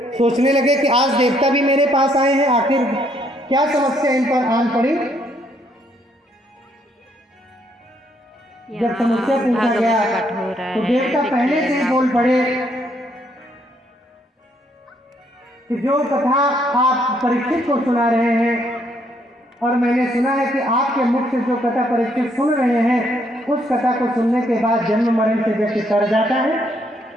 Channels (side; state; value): both; normal; correlation 0.70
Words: सोचने लगे कि आज देवता भी मेरे पास आए हैं, आखिर क्या समस्या इन पर आन पड़ी। जब समस्या पूछा गया तो देवता पहले से ही बोल पड़े कि जो कथा आप परीक्षित को सुना रहे हैं, और मैंने सुना है कि आपके मुख से जो कथा परीक्षित सुन रहे हैं, उस कथा को सुनने के बाद जन्म मरण से व्यक्ति तर जाता है।